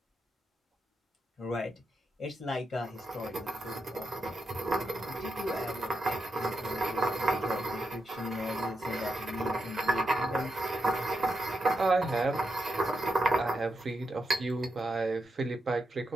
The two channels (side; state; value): both; normal; correlation 0.85